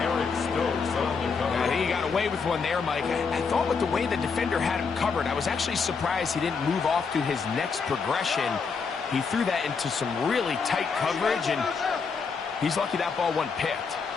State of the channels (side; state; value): right; quieter; 5.3 dB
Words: I think he got away with one there, Mike. I thought with the way the defender had him covered, I was actually surprised he didn't move off to his next progression. He threw that into some really tight coverage, and he's lucky that ball wasn't picked.